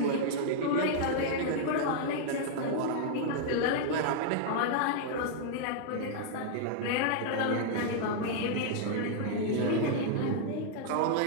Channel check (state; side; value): different; both; correlation -0.01